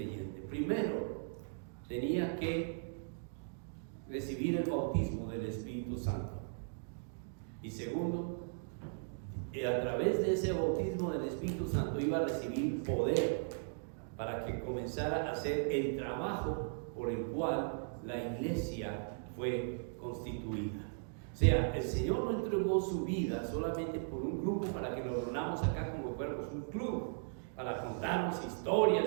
Primero, tenía que recibir el bautismo del Espíritu Santo. Y segundo, a través de ese bautismo del Espíritu Santo iba a recibir poder para que comenzara a hacer el trabajo por el cual la iglesia fue constituida. O sea, el Señor no entregó su vida solamente por un grupo para que nos reunamos acá como si fuéramos un club, para contarnos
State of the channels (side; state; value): left; silent; digital silence